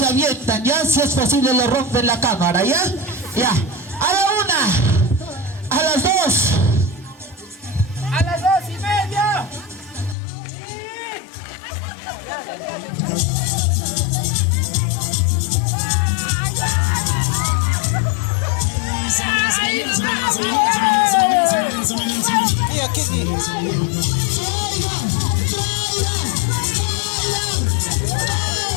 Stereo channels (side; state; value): right; drops out; at 10.2 s